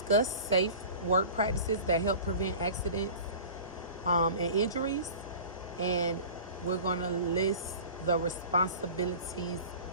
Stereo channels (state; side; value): inverted; both; correlation -0.39